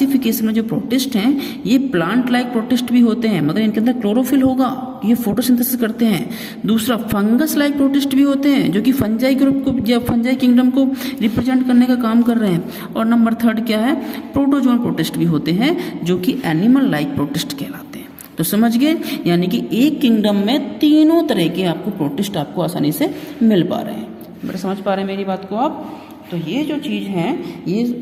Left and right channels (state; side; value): identical; both; correlation 1.00